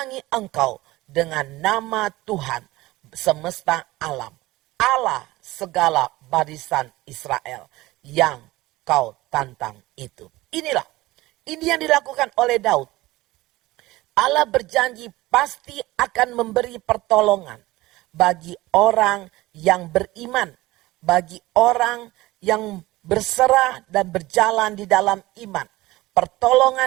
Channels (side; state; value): left; quieter; 18.8 dB